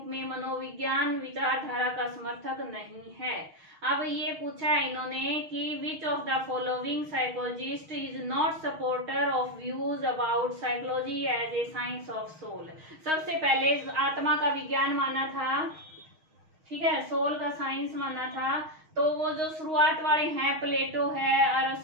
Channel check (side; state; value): left; late; 6.4 ms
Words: में मनोविज्ञान विचारधारा का समर्थक नहीं है। अब ये पूछा है इन्होंने कि which of the following psychologist is not supporter of views about psychology as a science of soul. सबसे पहले आत्मा का विज्ञान माना था, ठीक है, सोल का साइंस माना था। तो वो जो शुरुआत वाले हैं, प्लेटो है,